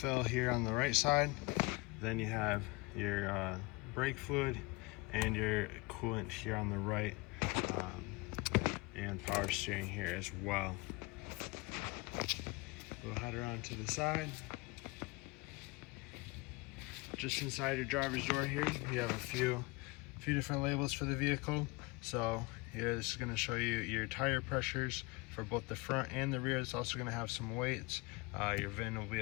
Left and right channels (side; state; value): right; quieter; 24.7 dB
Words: here on the right side, then you have your brake fluid and your coolant here on the right, and power steering here as well. We'll head around to the side. Just inside your driver's door here, you have a few different labels for the vehicle. So here, this is going to show you your tire pressures for both the front and the rear. It's also going to have some weights. Your VIN will be